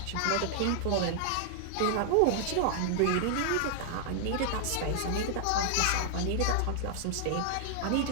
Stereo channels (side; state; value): both; different; correlation -0.01